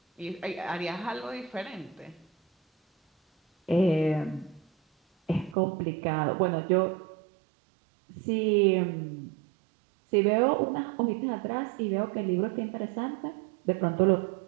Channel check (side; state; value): left; drops out; at 5.6 s